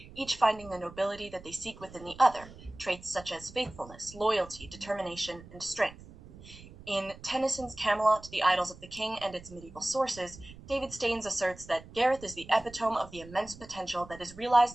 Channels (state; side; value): noise; right; rumble, 18 dB below the sound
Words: each finding the nobility that they seek within the other, traits such as faithfulness, loyalty, determination, and strength. In Tennyson's Camelot, The Idylls of the King and its Medieval Sources, David Staines asserts that Gareth is the epitome of the immense potential that is